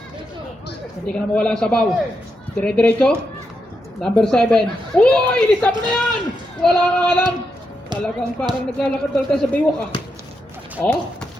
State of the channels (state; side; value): normal; both; correlation 0.84